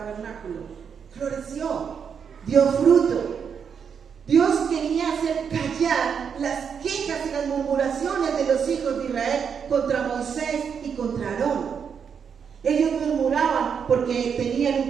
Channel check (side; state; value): left; quieter; 7.0 dB